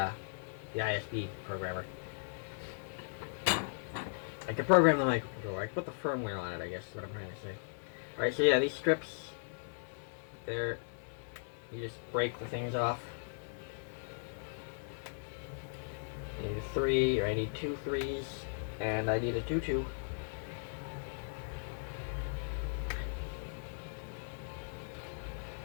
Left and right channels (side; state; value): right; silent; digital silence